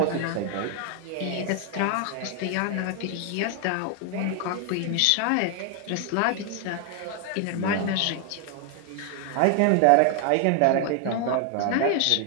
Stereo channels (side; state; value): both; different; correlation 0.00